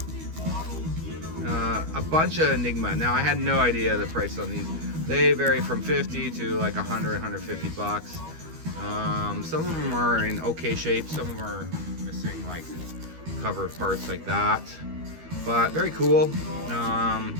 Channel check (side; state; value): left; late; 13 ms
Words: A bunch of Enigma. Now, I had no idea the price on these. They vary from 50 to like 100, 150 bucks. Some of them are in okay shape. Some of them are missing like cover parts like that. But very cool.